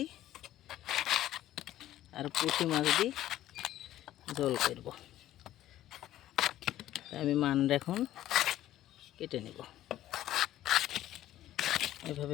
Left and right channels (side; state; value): right; quieter; 13.5 dB